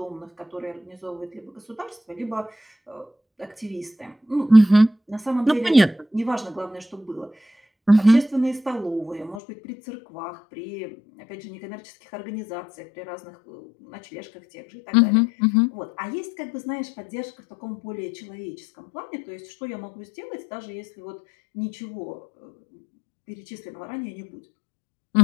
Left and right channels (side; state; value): right; drops out; at 9.4 s